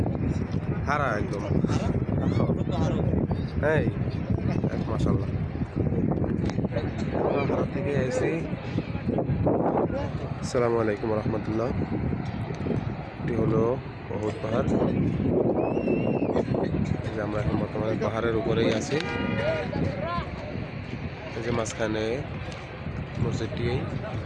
হারা একদম। হ্যাঁ মাশাআল্লাহ, হারা থেকে এসে। আসসালামু আলাইকুম রহমতুল্লাহ। এটি হলো অহুদ পাহাড়। এই যে আমরা এখন বর্তমানে পাহাড়ের উপরেই আছি। এই যে মাঝখানে মসজিদটি।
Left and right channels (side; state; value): both; identical; correlation 1.00